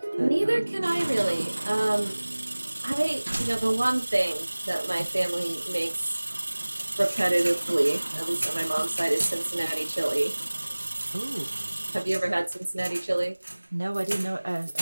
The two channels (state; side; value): inverted; both; correlation -1.00